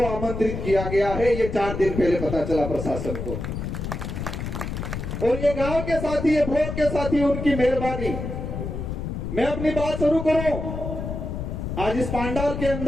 आमंत्रित किया गया है। ये 4 दिन पहले पता चला प्रशासन को, और ये गांव के साथी, ये भोर के साथी, उनकी मेहरबानी। मैं अपनी बात शुरू करूं आज इस पंडाल के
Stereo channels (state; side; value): noise; left; rumble, 5 dB below the sound